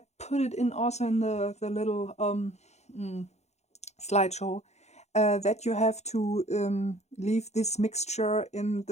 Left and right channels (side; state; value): right; late; 0.32 ms